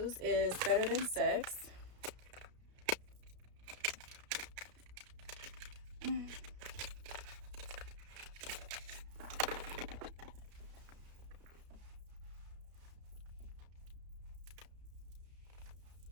is Better Than Sex.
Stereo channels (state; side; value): late; left; 33 ms